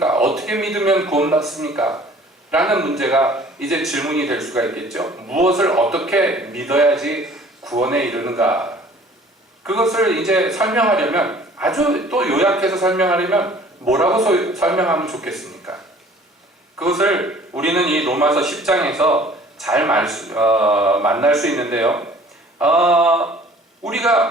어떻게 믿으면 구원받습니까? 라는 문제가 이제 질문이 될 수가 있겠죠. 무엇을 어떻게 믿어야지 구원에 이르는가? 그것을 이제 설명하려면, 아주 또 요약해서 설명하려면 뭐라고 설명하면 좋겠습니까? 그것을 우리는 이 로마서 10장에서 잘 만날 수 있는데요.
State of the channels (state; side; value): normal; both; correlation 0.51